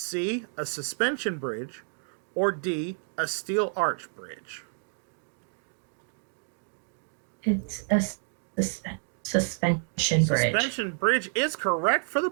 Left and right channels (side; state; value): left; silent; 58 dB below the other